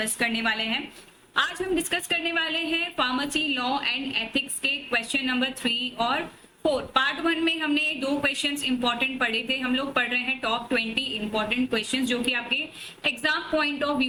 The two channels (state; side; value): identical; both; correlation 1.00